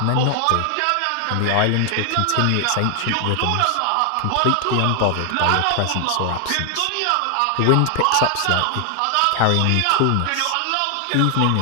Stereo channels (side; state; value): both; different; correlation 0.00